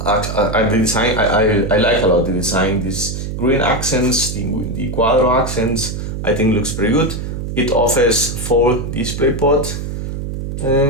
the design, I like a lot the design. These green accents, the Quadro accents, I think looks pretty good. It offers 4 DisplayPort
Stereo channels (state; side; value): noise; right; hum, 5 dB below the sound